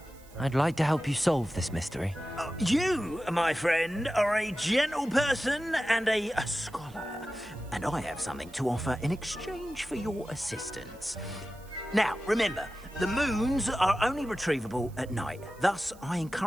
I'd like to help you solve this mystery. You, my friend, are a gentle person and a scholar, and I have something to offer in exchange for your assistance. Now, remember, the moons are only retrievable at night. Thus, I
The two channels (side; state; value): right; noise; hiss, 25 dB below the sound